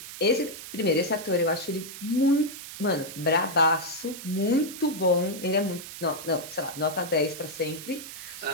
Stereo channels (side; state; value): right; noise; hiss, 12 dB below the sound